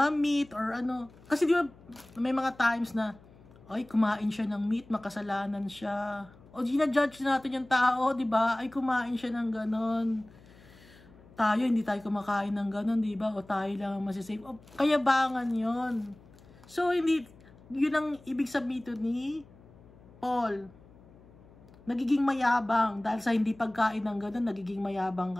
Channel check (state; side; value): noise; left; hum, 24 dB below the sound